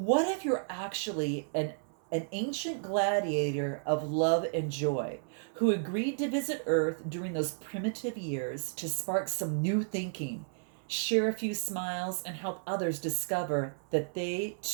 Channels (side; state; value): left; silent; 56 dB below the other